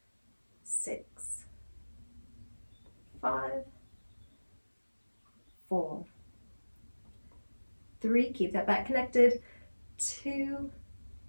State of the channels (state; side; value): inverted; both; correlation -1.00